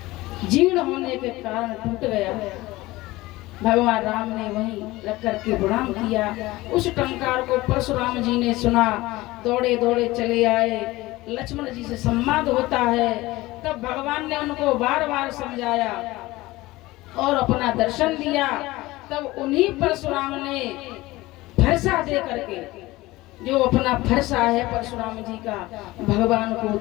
जीर्ण होने के कारण टूट गया। भगवान राम ने वहीं रख करके प्रणाम किया। उस टंकार को परशुराम जी ने सुना, दौड़े दौड़े चले आए। लक्ष्मण जी से संवाद होता है, तब भगवान ने उनको बार बार समझाया और अपना दर्शन दिया। तब उन्हीं परशुराम ने फरसा दे करके, जो अपना फरसा है परशुराम जी का, भगवान को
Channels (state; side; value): quieter; right; 19.2 dB